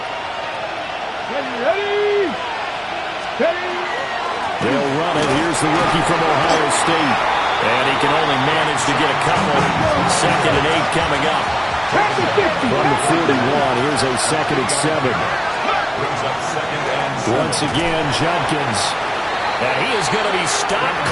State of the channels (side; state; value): both; identical; correlation 1.00